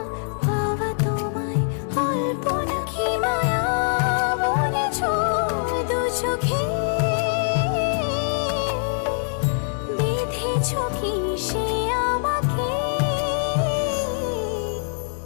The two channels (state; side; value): silent; right; 63 dB below the other